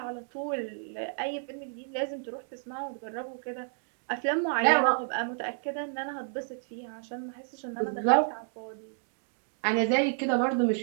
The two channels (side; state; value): left; silent; digital silence